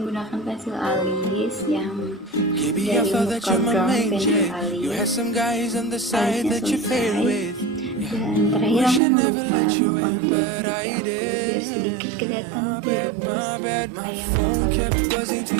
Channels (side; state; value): left; drops out; at 9.0 s